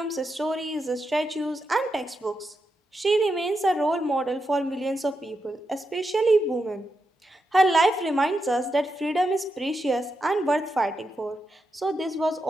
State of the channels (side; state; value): both; normal; correlation 0.85